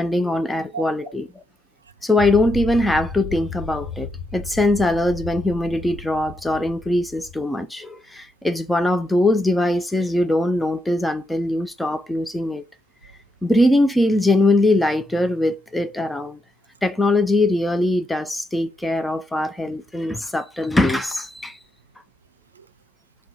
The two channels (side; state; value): both; normal; correlation 0.83